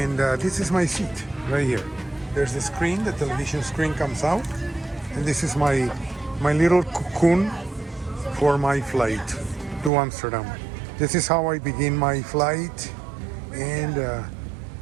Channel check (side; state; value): left; drops out; at 9.9 s